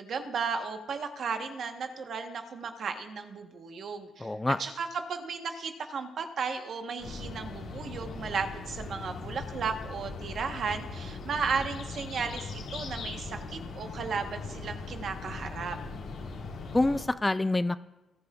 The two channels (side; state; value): both; normal; correlation 0.83